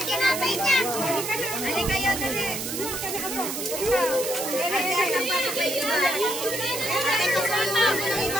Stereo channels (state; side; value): noise; right; hiss, 5 dB below the sound